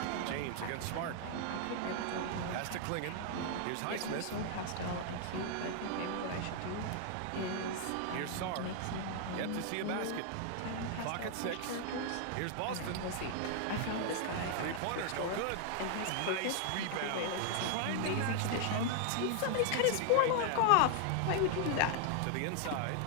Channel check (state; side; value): different; both; correlation 0.00